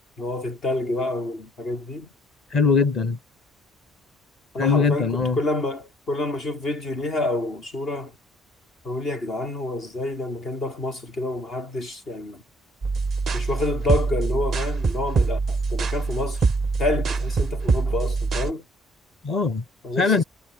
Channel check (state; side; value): normal; both; correlation 0.61